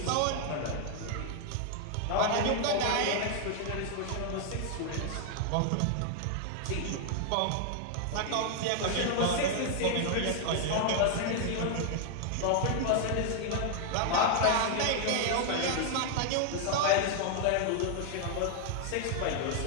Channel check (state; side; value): different; both; correlation 0.00